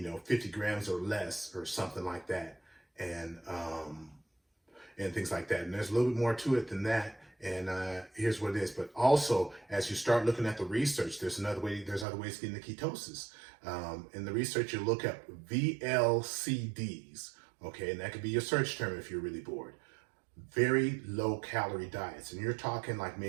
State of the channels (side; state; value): left; drops out; at 12.1 s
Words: grams or less or something like that. And things like that. And there's a little bit more to it than that. And here's what it is. But also, as you start looking at the research, there's other ways to get into ketosis. In the research, you look up VLCDs, okay? And that could be your search term if you're really bored. Very low calorie diets. And you're talking like